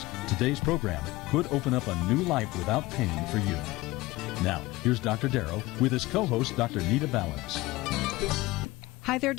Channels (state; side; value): quieter; right; 20.2 dB